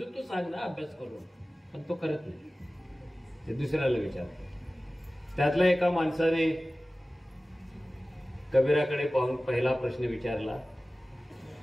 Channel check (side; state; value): both; normal; correlation 0.97